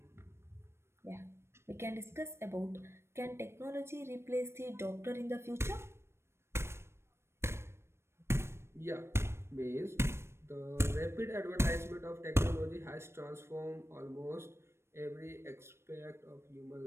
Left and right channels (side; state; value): left; late; 0.12 ms